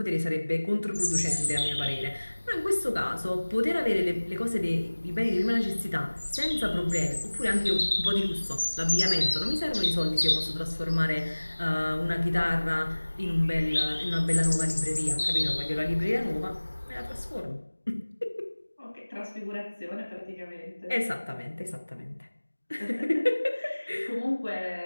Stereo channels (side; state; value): both; inverted; correlation -1.00